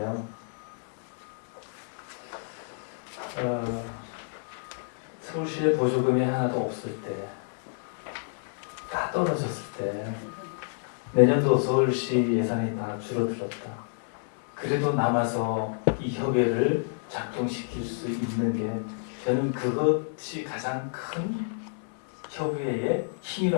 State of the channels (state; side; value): silent; right; digital silence